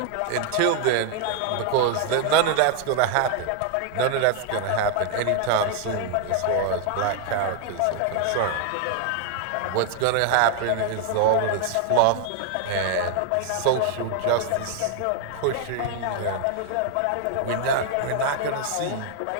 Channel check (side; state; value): both; different; correlation 0.00